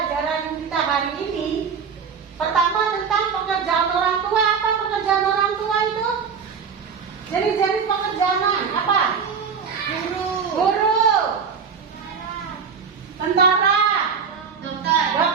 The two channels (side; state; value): left; quieter; 6.2 dB